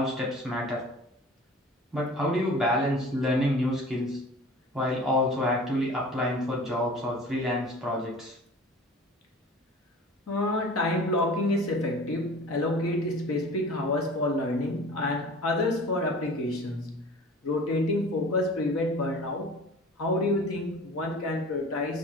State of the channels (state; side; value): normal; both; correlation 0.41